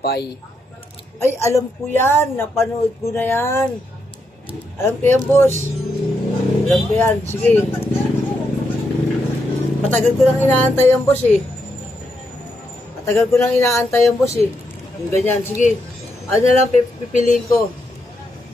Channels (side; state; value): both; normal; correlation 0.81